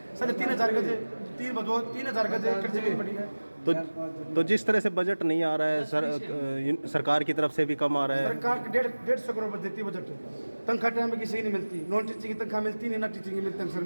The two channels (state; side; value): inverted; both; correlation -1.00